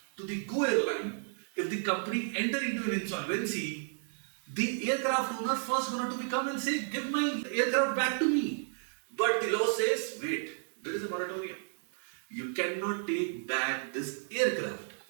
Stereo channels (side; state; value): left; silent; 56 dB below the other